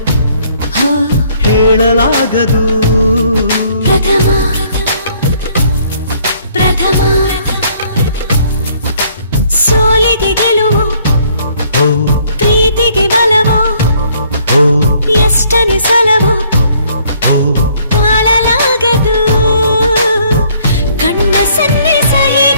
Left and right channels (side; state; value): both; inverted; correlation -0.63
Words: ಹೇಳಲಾಗದು ಪ್ರಥಮ ಪ್ರಥಮ ಸೋಲಿಗೆ ಗೆಲುವು ಪ್ರೀತಿಗೆ ಬಲವೋ ಎಷ್ಟನ್ನು ಸಲವೋ ತಾಳಲಾಗದು ಕಣ್ಣ ಸನ್ನಿಸ